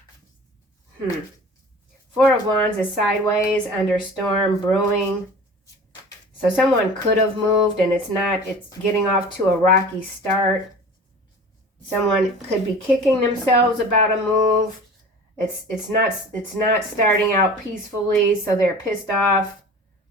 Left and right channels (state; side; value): normal; both; correlation 0.40